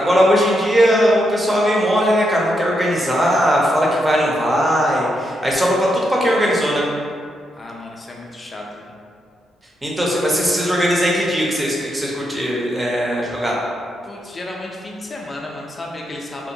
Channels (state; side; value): normal; both; correlation 0.82